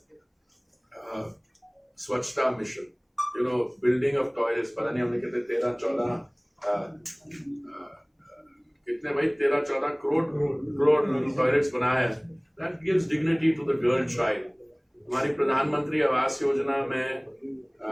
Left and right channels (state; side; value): identical; both; correlation 1.00